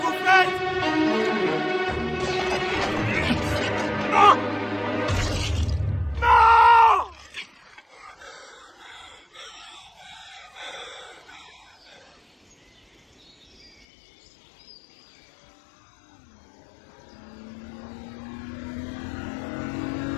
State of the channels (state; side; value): drops out; right; at 13.9 s